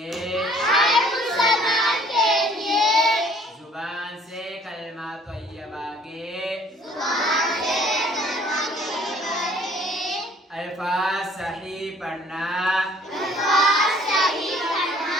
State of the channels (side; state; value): both; normal; correlation 0.56